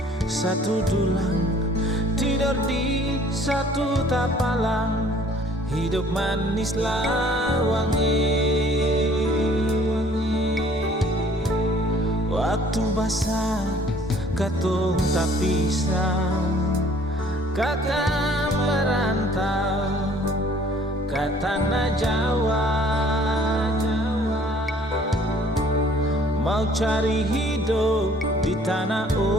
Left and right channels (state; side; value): normal; both; correlation 0.56